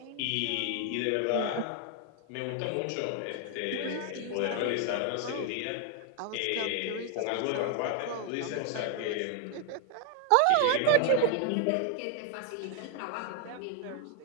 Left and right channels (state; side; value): different; both; correlation 0.00